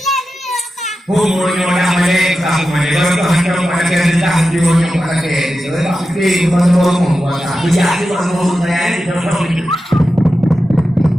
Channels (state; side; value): normal; both; correlation 0.92